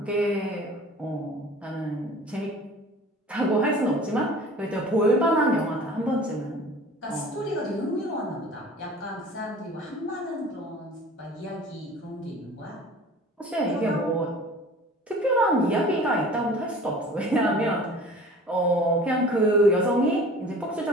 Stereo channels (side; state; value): both; normal; correlation 0.44